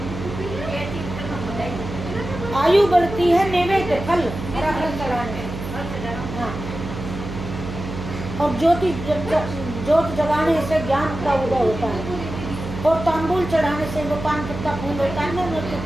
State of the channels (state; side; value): noise; right; hum, 8 dB below the sound